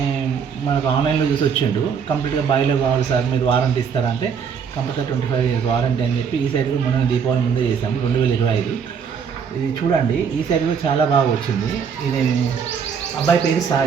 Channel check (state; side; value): quieter; left; 6.7 dB